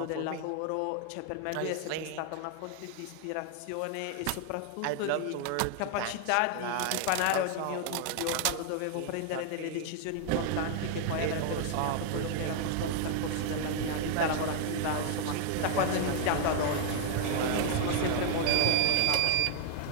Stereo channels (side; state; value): both; different; correlation 0.00